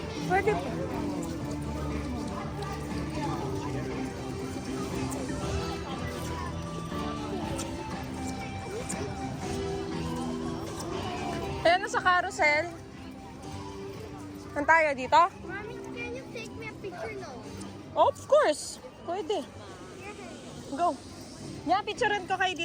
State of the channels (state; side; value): identical; both; correlation 1.00